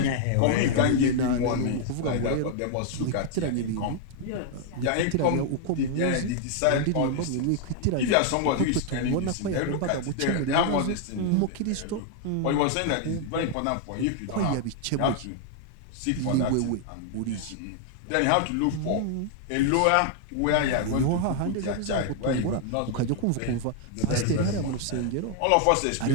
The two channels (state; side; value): different; both; correlation 0.00